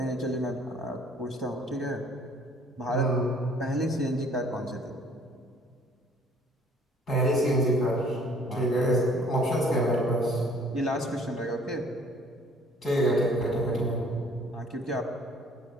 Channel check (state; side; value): normal; both; correlation 0.56